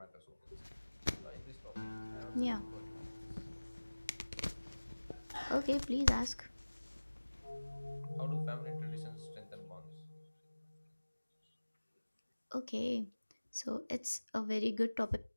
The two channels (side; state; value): both; inverted; correlation -1.00